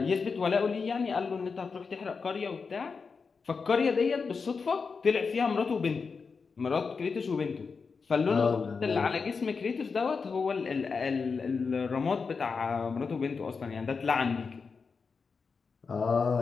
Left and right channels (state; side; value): quieter; right; 5.1 dB